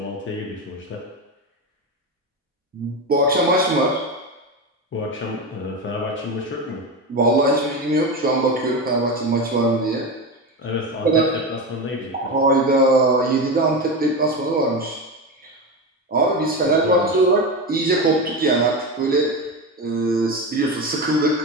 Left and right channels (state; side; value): normal; both; correlation 0.19